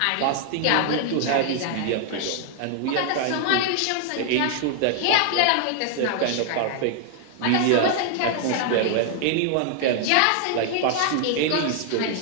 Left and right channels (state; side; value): different; both; correlation 0.00